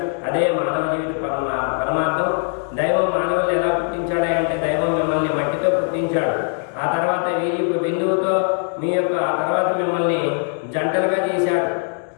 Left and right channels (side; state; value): right; silent; 56 dB below the other